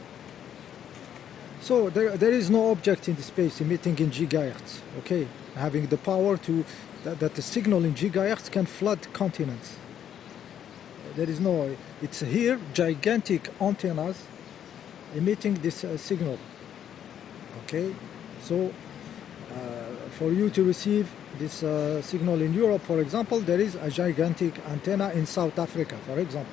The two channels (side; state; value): right; quieter; 9.6 dB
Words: So there is no object in the space emitting in gigahertz, okay, having the power to that the signal in gigahertz can flood continents. There is no. It's here gigantic antennas emitting this signal. Okay, so for you to receive this signal in Europe, for example, there is a gigantic antenna in South Africa, for